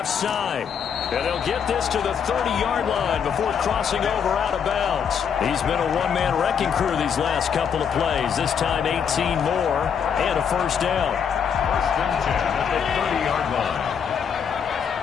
side. And they'll get this to the 30-yard line before crossing over out of bounds. He's been a one-man wrecking crew these last couple of plays. This time 18 more and a first down. First and 10 at the 30-yard line.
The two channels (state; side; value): quieter; right; 7.4 dB